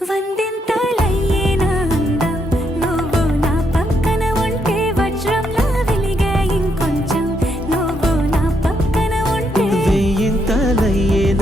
వందింతలయ్యేనా అందం నువ్వు నా పక్కన ఉంటే వజ్రంలా వెలిగే ఇంకొంచెం నువ్వు నా పక్కన ఉంటే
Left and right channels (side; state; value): both; normal; correlation 0.77